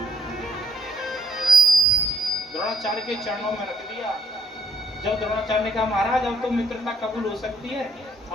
द्रोणाचार्य के चरणों में रख दिया। जब द्रोणाचार्य ने कहा महाराज अब तो मित्रता कबूल हो सकती है,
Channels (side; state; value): both; normal; correlation 0.68